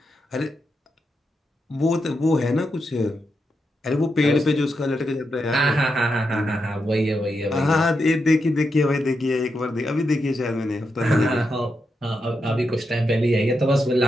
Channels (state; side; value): normal; both; correlation 0.85